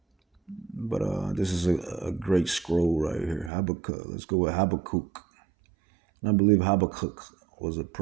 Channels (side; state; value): left; drops out; at 3.5 s